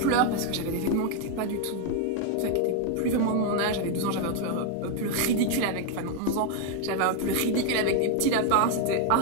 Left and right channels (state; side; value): different; both; correlation 0.00